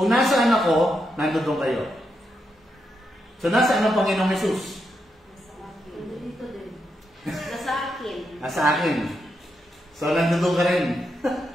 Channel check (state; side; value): normal; both; correlation 0.83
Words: nasaan ako, nandun kayo. So, nasaan ang Panginoong Jesus? Dito din. Nasa akin. Nasa akin. So, nandun ka rin.